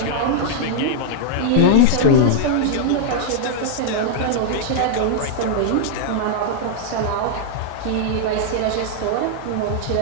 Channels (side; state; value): both; different; correlation -0.01